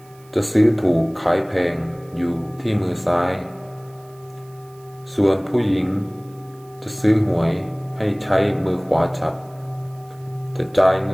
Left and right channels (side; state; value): right; noise; hiss, 29 dB below the sound